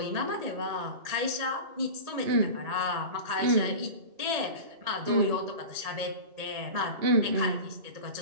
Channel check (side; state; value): left; late; 1.8 ms